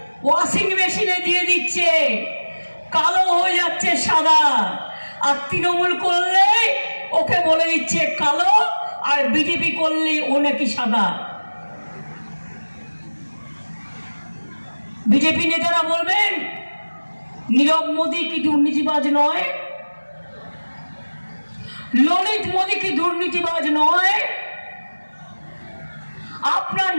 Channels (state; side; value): inverted; both; correlation -1.00